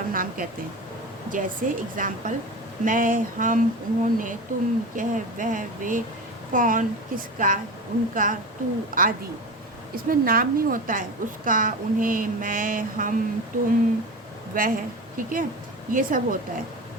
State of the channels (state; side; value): normal; both; correlation 0.27